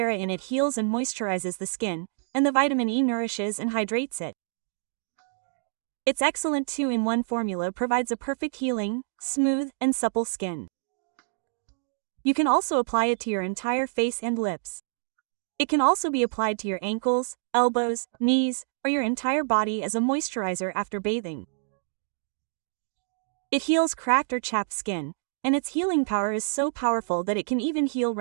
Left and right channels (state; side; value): silent; left; digital silence